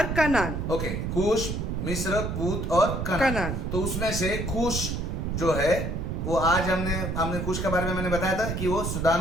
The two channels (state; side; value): noise; right; rumble, 2 dB below the sound